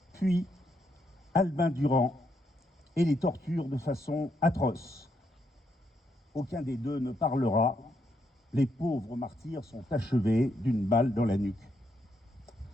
puis Albin Durand, et les torturent de façon atroce. Aucun des deux ne parlera. Les pauvres martyrs sont achevés d'une balle dans la nuque.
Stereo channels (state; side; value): normal; both; correlation 0.78